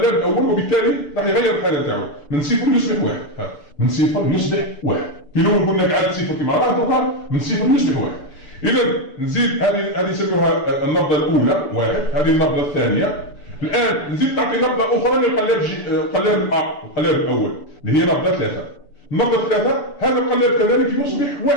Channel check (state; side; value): late; right; 6.8 ms